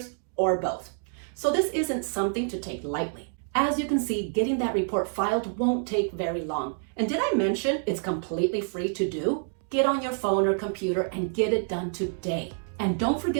or both. So this isn't something to take lightly. As you can see, getting that report filed won't take very long. And did I mention it's completely free to do? Get on your phone or computer and get it done today. And don't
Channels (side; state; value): left; silent; digital silence